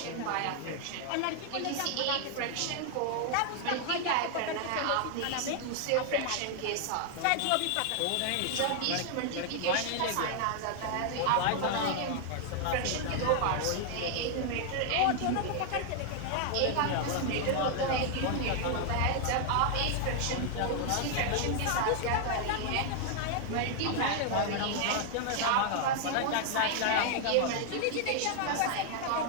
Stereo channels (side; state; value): both; different; correlation 0.00